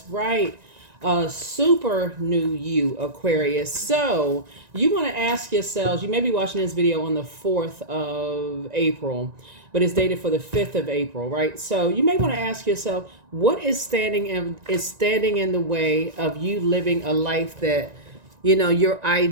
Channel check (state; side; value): late; left; 1.9 ms